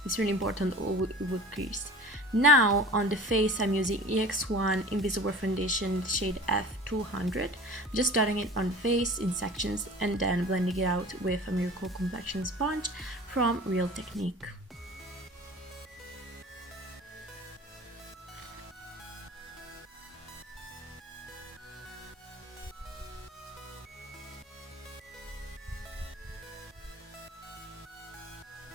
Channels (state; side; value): normal; both; correlation 0.40